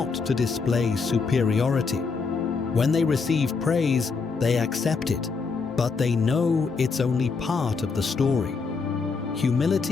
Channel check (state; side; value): quieter; right; 4.8 dB